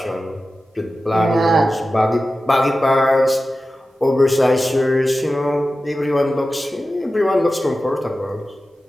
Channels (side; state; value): both; normal; correlation 0.94